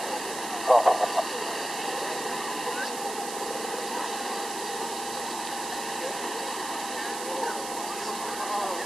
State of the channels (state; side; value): noise; right; hiss, 7 dB below the sound